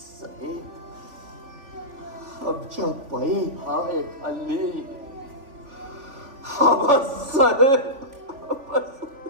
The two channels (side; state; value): left; late; 3.5 ms